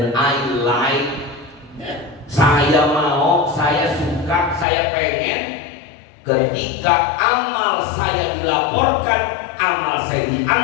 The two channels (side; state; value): right; drops out; at 4.7 s